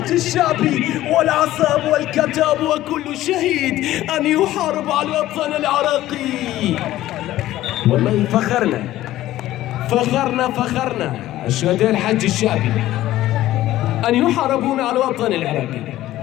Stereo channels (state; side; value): quieter; right; 14.8 dB